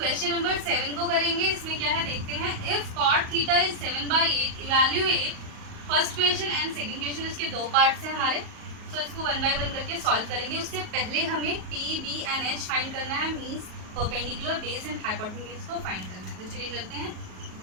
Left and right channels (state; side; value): late; left; 38 ms